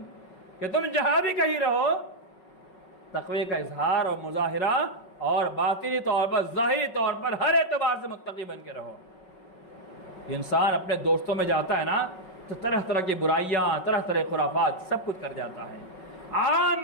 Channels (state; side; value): late; right; 5.4 ms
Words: کہ تم جہاں بھی کہیں رہو تقوی کا اظہار اور مظاہرہ اور باطنی طور پر ظاہری طور پر ہر اعتبار سے متقی بن کے رہو۔ انسان اپنے دوستوں میں جاتا ہے نا تو طرح طرح کی برائیاں، طرح طرح خرافات سب کچھ کر جاتا ہے۔ عام